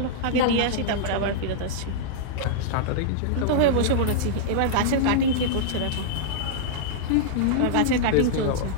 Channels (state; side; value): different; both; correlation -0.02